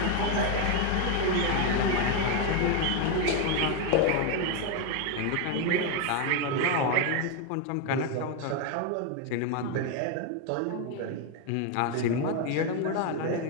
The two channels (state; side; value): different; both; correlation 0.02